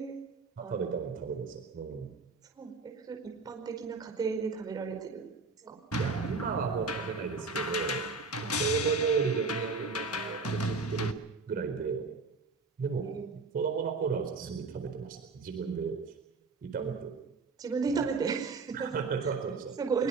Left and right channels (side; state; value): left; quieter; 4.1 dB